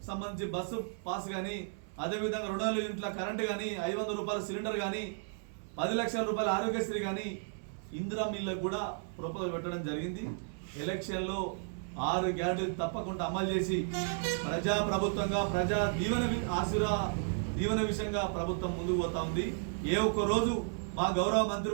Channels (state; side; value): silent; left; 55 dB below the other